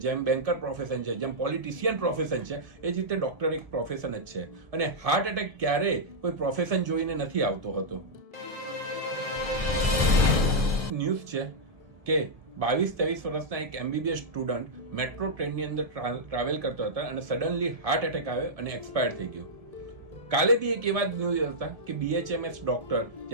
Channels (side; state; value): left; late; 1.7 ms